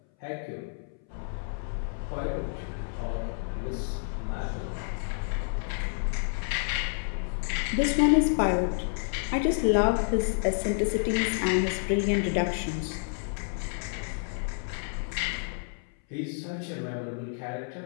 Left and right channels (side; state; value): right; silent; 58 dB below the other